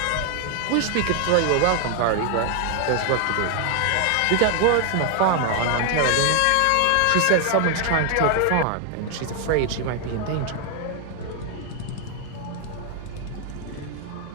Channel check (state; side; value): different; both; correlation 0.00